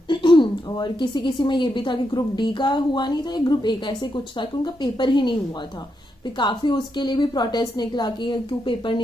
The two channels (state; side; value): normal; both; correlation 0.83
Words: और किसी किसी में ये भी था कि ग्रुप डी का हुआ नहीं था या ग्रुप ए का, ऐसे कुछ था कि उनका पेपर ही नहीं हुआ था। फिर काफी उसके लिए भी प्रोटेस्ट निकला कि क्यों पेपर